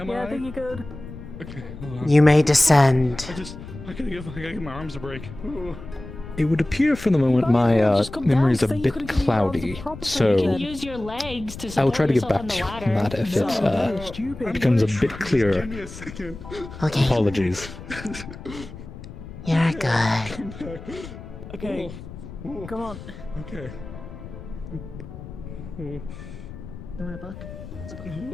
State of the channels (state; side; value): noise; left; rumble, 13 dB below the sound